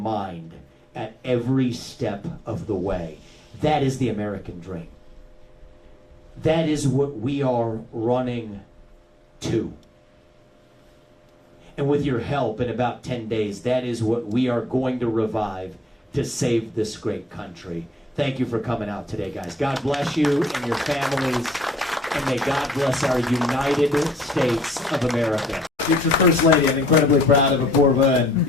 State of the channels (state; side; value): normal; both; correlation 0.67